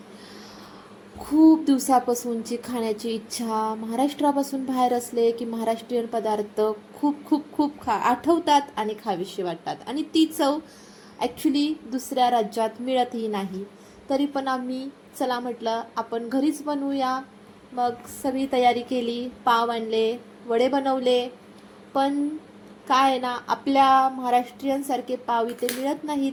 खूप दिवसापासूनची खाण्याची इच्छा. महाराष्ट्रापासून बाहेर असले की महाराष्ट्रीयन पदार्थ खूप खूप खूप आठवतात आणि खावीशी वाटतात, आणि ती चव ॲक्च्युली दुसऱ्या राज्यात मिळतही नाही. तरी पण आम्ही चला म्हटलं आपण घरीच बनवूया. मग सगळी तयारी केली, पाव आणले, वडे बनवले. पण काय आहे ना, आपल्या महाराष्ट्रीयनसारखे पाव इथे मिळत नाहीत.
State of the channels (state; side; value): identical; both; correlation 1.00